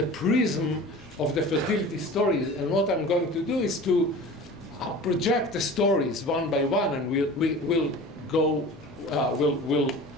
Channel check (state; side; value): normal; both; correlation 0.38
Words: prism of the fertility stories. And what I'm going to do is to project the stories one by one, and we'll